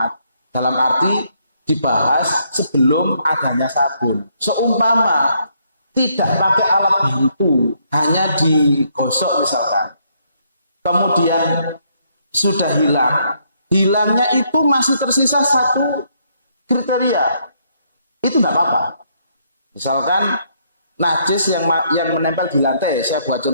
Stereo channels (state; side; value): inverted; both; correlation -0.72